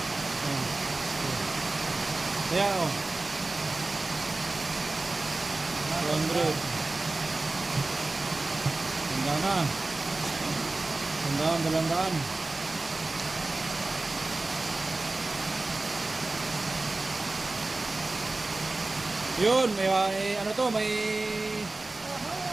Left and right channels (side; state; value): left; quieter; 3.2 dB